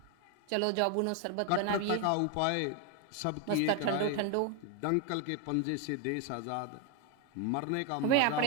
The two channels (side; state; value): both; different; correlation 0.01